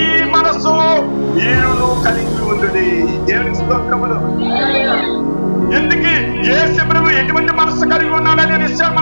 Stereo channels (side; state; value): both; inverted; correlation -1.00